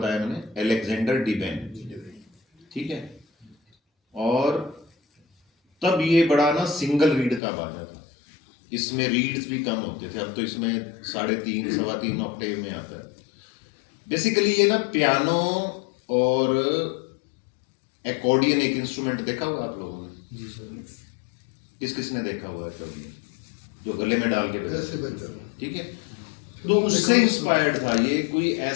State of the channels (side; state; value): right; drops out; at 7.4 s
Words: मैंने? अलेक्जेंडर डिवेन, ठीक है। और तब ये बड़ा ना सिंगल रीड का बाजा था, इसमें रीड्स भी कम होते थे। अब तो इसमें 3.5 सवा 3 ऑक्टेव में आता है। बेसिकली ये ना पियानो और एकॉर्डियन एक इंस्ट्रूमेंट देखा हुआ आप लोगों ने? जी सर। किस किसने देखा हुआ है एकॉर्डियन, जो गले में डाल के बजाते, ठीक है। तो उससे इंस्पायर्ड था ये। कोई